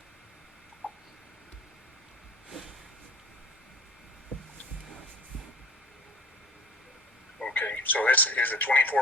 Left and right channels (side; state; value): both; normal; correlation 0.42